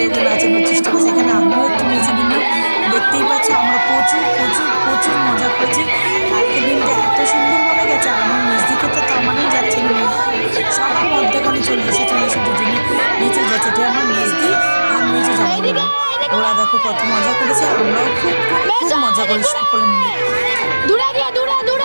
ওকে নাচানোর চেষ্টা করছে। এখানে আমিও একটু নেচে নিলাম। দেখতেই পাচ্ছ আমরা প্রচুর প্রচুর প্রচুর মজা করেছি। কালকে দিনটা এত সুন্দরভাবে গেছে, আর আমার মেজদিকে তো তার মানেই যাচ্ছে না, সবার মধ্যেখানে চলে এসে দুজনে নেচে যাচ্ছে। এটা আমার মেজদি আর মেজে যাবো, ওরা দেখো কত মজা করেছে, আমরাও খুব খুব খুব মজা করি সকলে মিলে।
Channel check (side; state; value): both; inverted; correlation -1.00